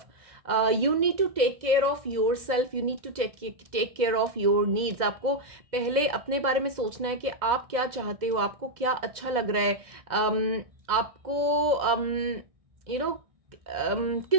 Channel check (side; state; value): left; late; 2.0 ms